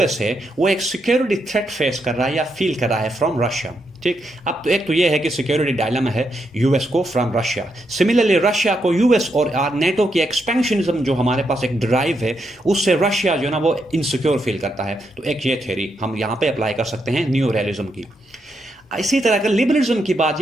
है वो एक सिक्योरिटी थ्रेट फेस कर रहा है या फील कर रहा है फ्रॉम रशिया। ठीक, अब तो एक तो ये है कि सिक्योरिटी डायलेमा है यूएस को फ्रॉम रशिया। सिमिलरली रशिया को यूएस और नेटो की एक्सपेंशनिज्म जो हमारे पास एक ड्राइव है उससे रशिया जो है ना वो इनसिक्योर फील करता है। तो एक ये थ्योरी हम यहाँ पे अप्लाई कर सकते हैं न्यू रियलिज्म की। इसी तरह अगर लिबरलिज्म की बात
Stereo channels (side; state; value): both; normal; correlation 0.81